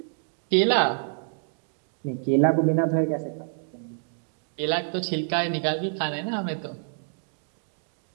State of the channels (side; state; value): left; silent; digital silence